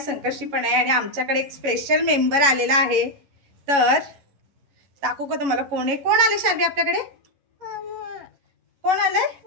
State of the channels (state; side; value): late; left; 11 ms